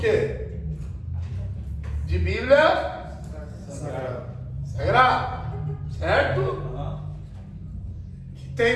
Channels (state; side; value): identical; both; correlation 1.00